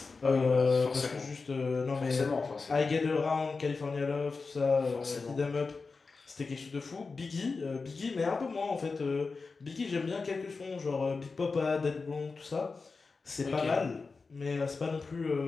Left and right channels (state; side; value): quieter; right; 4.3 dB